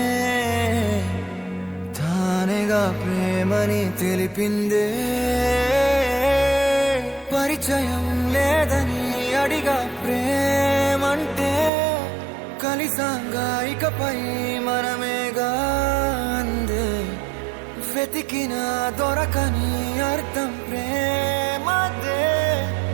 తానేగా ప్రేమని తెలిపిందే. పరిచయం లేదని అడిగా ప్రేమంటే, కలిసాంగా ఇకపై మనమేగా అందే. వెతికిన దొరకని అర్థం ప్రేమదే,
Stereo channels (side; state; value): left; drops out; at 11.7 s